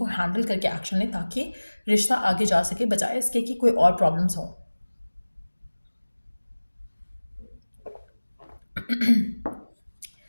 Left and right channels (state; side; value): inverted; both; correlation -1.00